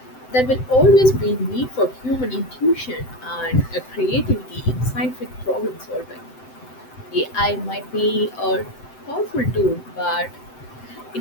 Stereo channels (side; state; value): right; late; 7.8 ms